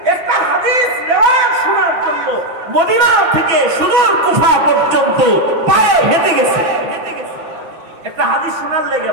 একটা হাদিস রিওয়ায়াত শোনার জন্য মদিনা থেকে সুদূর কুফা পর্যন্ত পায়ে হেঁটে গেছে। একটা হাদিস শোনার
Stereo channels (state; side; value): late; left; 6.1 ms